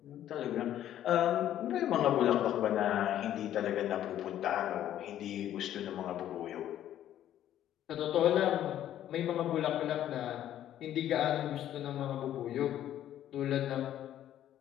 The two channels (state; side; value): quieter; right; 11.7 dB